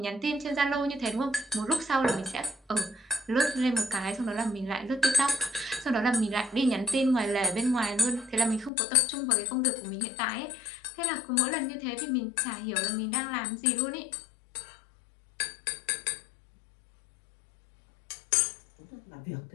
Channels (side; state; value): right; drops out; at 8.7 s